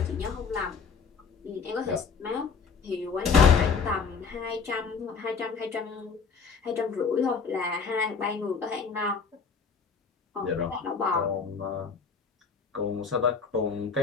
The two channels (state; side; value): quieter; right; 5.5 dB